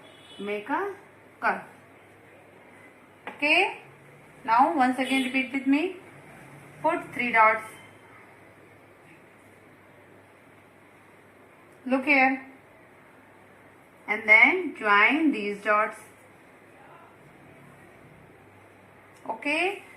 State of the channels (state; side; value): identical; both; correlation 1.00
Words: make a curve. Okay, now once again repeat with me. Put 3 dots. Look here. And then join these dots. Okay,